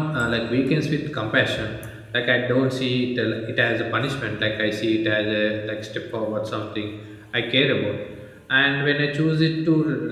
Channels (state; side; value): identical; both; correlation 1.00